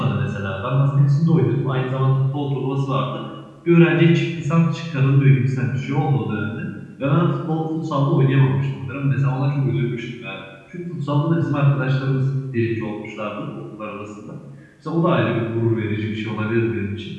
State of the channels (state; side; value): identical; both; correlation 1.00